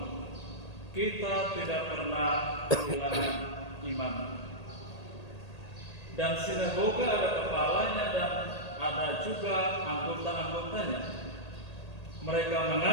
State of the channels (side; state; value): right; late; 1.8 ms